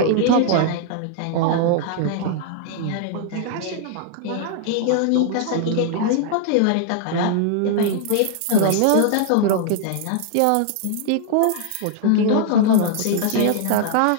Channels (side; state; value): both; different; correlation -0.01